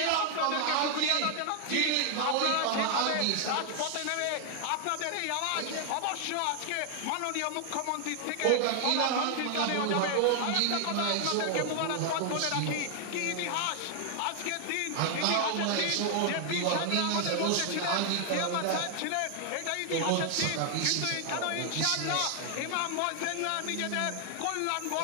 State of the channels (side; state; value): both; different; correlation 0.00